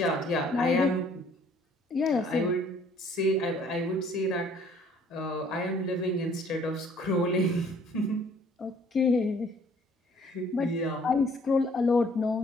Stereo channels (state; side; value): normal; both; correlation 0.59